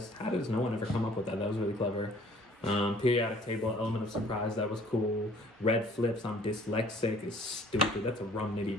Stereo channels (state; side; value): normal; both; correlation 0.55